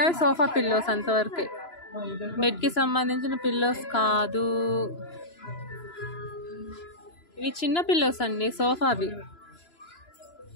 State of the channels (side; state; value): right; late; 2.9 ms